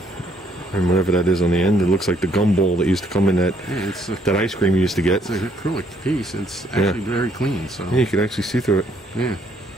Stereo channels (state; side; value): normal; both; correlation 0.67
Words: and whatever that is on the end, it looks like the gumball that used to come in that It's a, that ice cream you used to get. it's an acrylic piece. It's actually very clean. So Yeah, you can actually see through it. yeah,